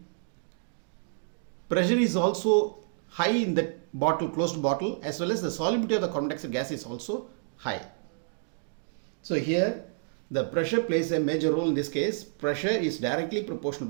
pressure is also high in that bottle, closed bottle, as well as the solubility of the carbon dioxide gas is also high. So here the pressure plays a major role in this case. Pressure is directly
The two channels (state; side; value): silent; left; digital silence